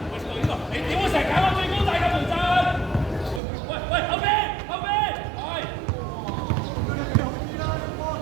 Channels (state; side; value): drops out; left; at 3.4 s